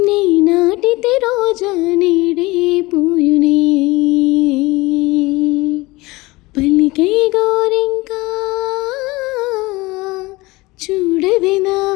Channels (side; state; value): right; quieter; 21.7 dB